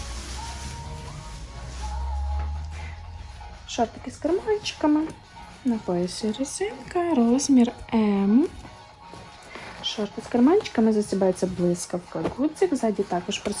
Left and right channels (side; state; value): both; identical; correlation 1.00